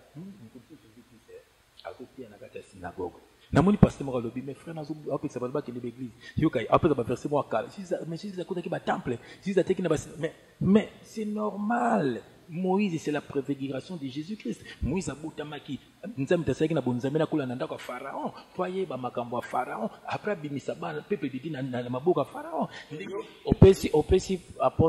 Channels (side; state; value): both; identical; correlation 1.00